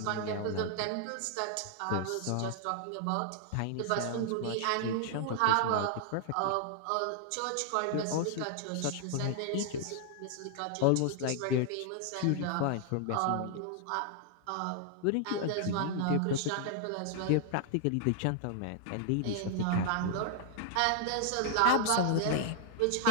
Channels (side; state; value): both; different; correlation 0.00